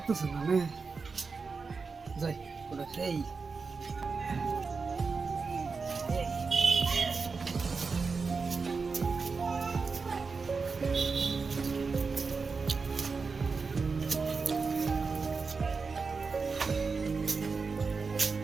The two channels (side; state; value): left; quieter; 4.7 dB